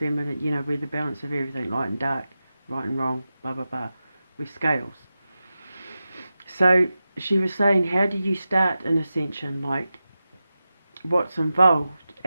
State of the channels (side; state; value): both; inverted; correlation -0.93